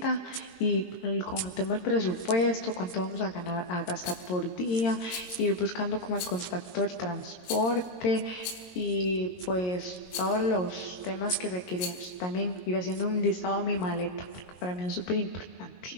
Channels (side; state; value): right; late; 22 ms